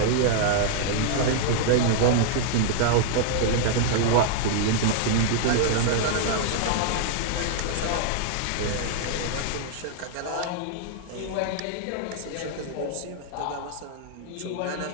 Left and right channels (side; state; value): both; different; correlation -0.01